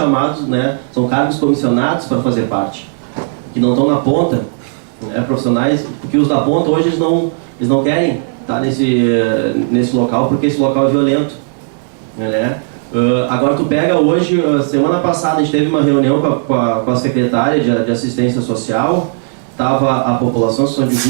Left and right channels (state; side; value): silent; left; digital silence